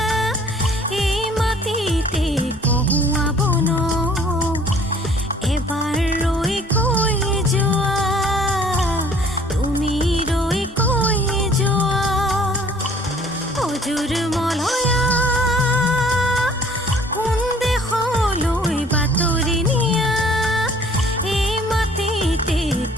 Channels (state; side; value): normal; both; correlation 0.54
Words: এই মাটিতে কহুৱাব ন এবাৰ ৰৈ কৈ যোৱা তুমি ৰৈ কৈ যোৱা অজুৰ মলয়া কোন দেশলৈ বাতৰি নিয়া এই মাটিতে